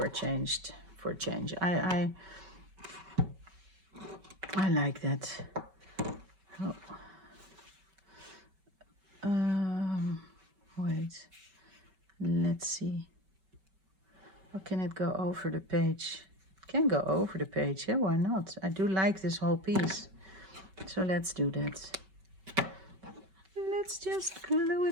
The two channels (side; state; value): left; late; 5.3 ms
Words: a change. I like that. Oh. Wait, let's see. Or can it go over the page? It can go over the page, yeah, why not? I do like this whole piece. So let's do that. Let's just glue